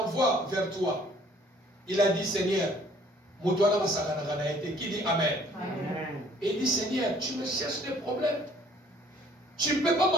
vers toi. Il a dit, Seigneur, qui dit Amen. Amen. Et il dit, Seigneur, tu me cherches des problèmes. Tu ne peux pas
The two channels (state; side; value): normal; both; correlation 0.58